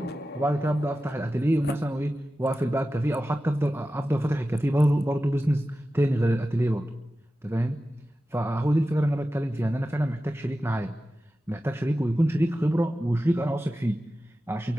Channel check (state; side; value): normal; both; correlation 0.94